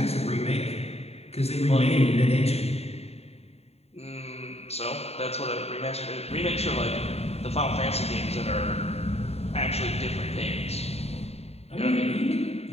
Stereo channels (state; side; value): late; right; 0.30 ms